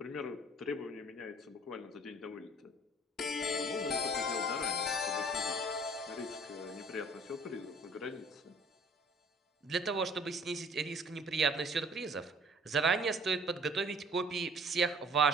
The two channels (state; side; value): normal; both; correlation 0.53